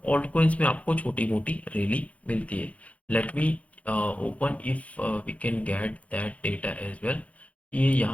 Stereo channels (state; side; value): late; right; 0.066 ms